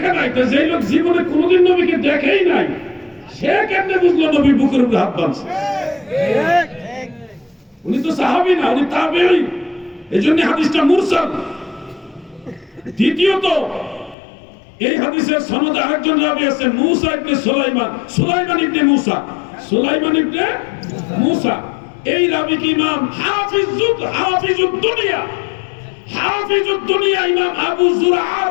নাই। তো যেই লোক জীবনে কোনোদিন নবীকে দেখেই নাই, সে কেমনে বুঝলো নবী বুকের উপরে হাত বাঁধছে? উনি তো সাহাবী না, উনি তাবেঈ। এজন্য হাদিসটা মুরসাল। দ্বিতীয়ত, এই হাদিসের সনদে আরেকজন রাবী আছেন, মুসা ইবনে সুলাইমান, সুলাইমান ইবনে মুসা, সুলাইমান ইবনে মুসা। এই রাবী কি ইমাম হাফিজুদ দুনিয়া, হাফিজুদ দুনিয়া ইমাম আবু যুরআ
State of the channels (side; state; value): right; drops out; at 14.2 s